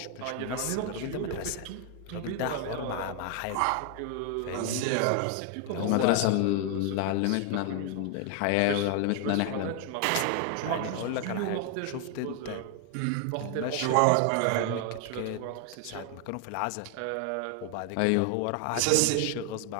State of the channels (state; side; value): different; both; correlation 0.00